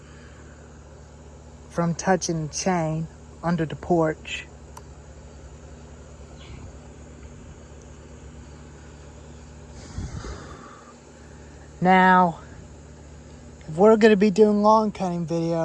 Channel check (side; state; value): both; identical; correlation 1.00